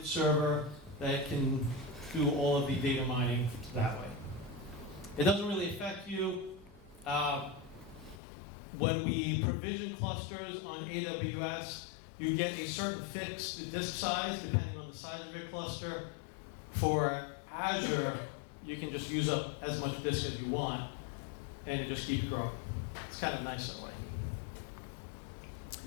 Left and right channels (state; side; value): drops out; right; at 8.2 s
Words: server that can do all of the data mining that way. It doesn't really affect you. When we provision clusters on AWS, you get a certain fixed disk size depending on the size of your cluster. For Azure, you can just use up as much disk as you want, and it just keeps growing. It's kind of nice that way.